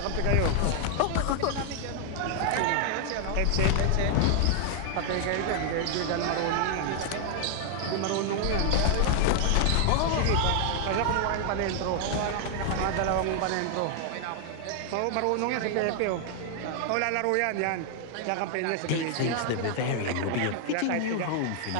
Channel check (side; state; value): both; different; correlation 0.00